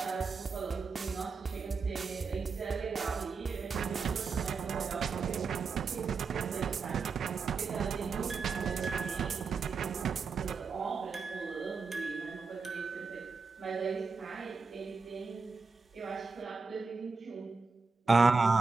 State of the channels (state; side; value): quieter; left; 4.7 dB